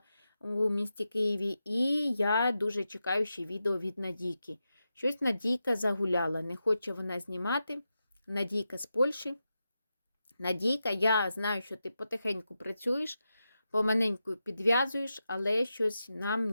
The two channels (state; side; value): inverted; both; correlation -0.89